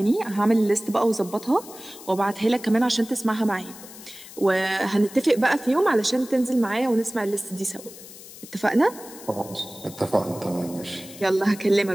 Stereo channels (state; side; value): noise; left; hiss, 17 dB below the sound